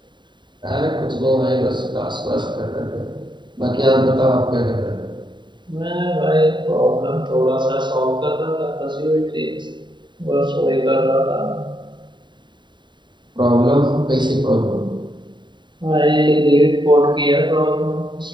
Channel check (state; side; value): late; left; 0.22 ms